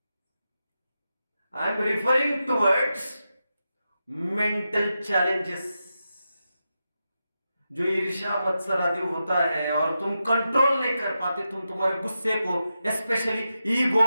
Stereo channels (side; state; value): both; inverted; correlation -0.89